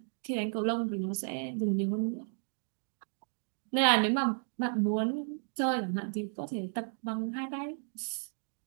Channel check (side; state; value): left; silent; digital silence